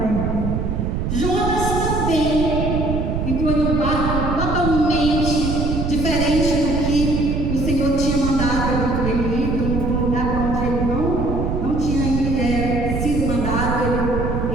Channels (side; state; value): right; noise; rumble, 1 dB below the sound